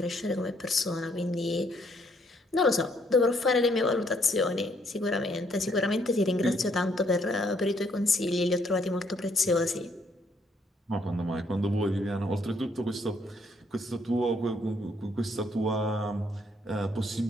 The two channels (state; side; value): normal; both; correlation 0.69